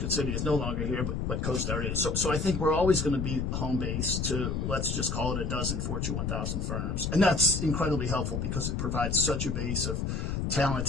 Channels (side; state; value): left; noise; rumble, 1 dB below the sound